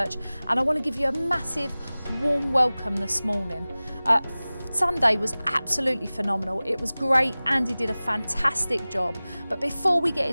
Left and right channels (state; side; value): inverted; both; correlation -0.98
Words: and I want to give you a massive warm welcome this morning. Sunday was absolutely phenomenal. It was great. Andy did a fantastic job. But before we get